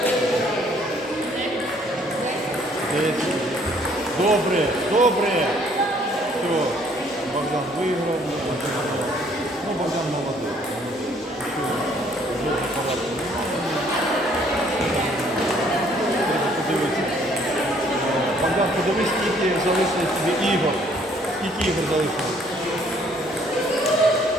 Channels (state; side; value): normal; both; correlation 0.62